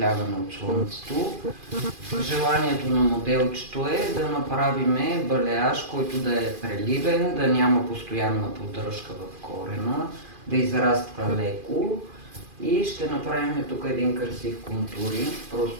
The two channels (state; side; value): late; left; 2.4 ms